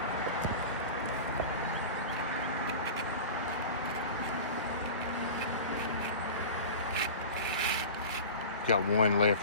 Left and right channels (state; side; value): inverted; both; correlation -0.34